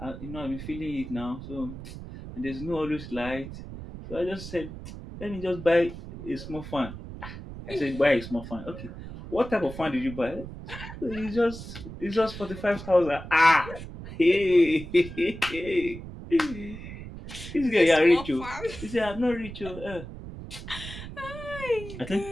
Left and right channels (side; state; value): right; noise; rumble, 11 dB below the sound